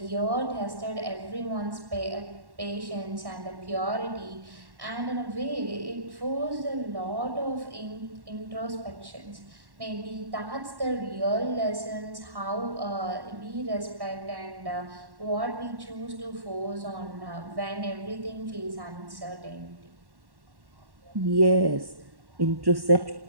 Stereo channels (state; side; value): late; left; 1.1 ms